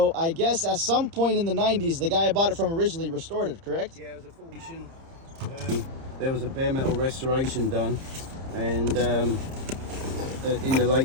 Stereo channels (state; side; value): late; left; 30 ms